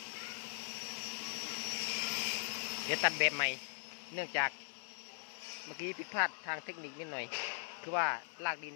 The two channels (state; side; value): silent; right; digital silence